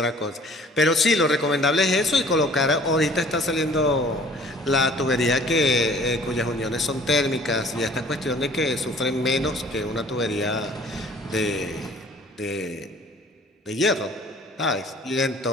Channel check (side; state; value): both; normal; correlation 0.52